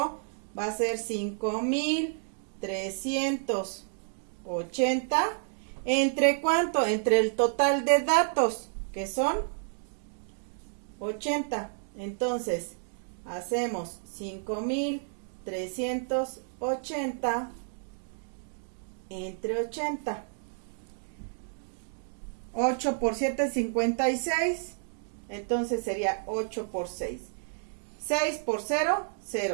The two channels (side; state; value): left; silent; digital silence